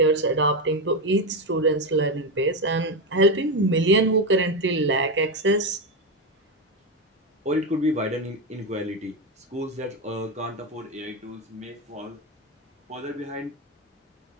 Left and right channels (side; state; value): both; normal; correlation 0.11